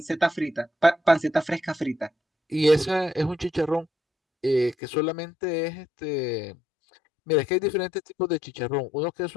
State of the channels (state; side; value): drops out; right; at 4.8 s